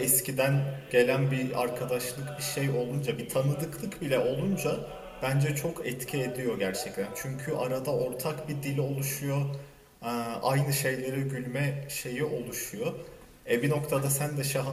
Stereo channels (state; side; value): identical; both; correlation 1.00